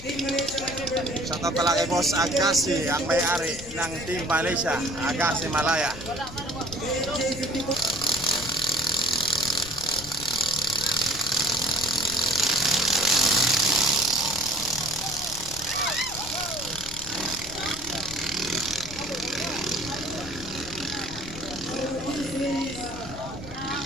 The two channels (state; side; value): noise; left; rumble, 14 dB below the sound